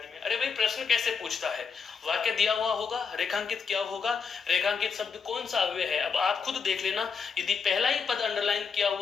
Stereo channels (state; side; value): quieter; right; 5.8 dB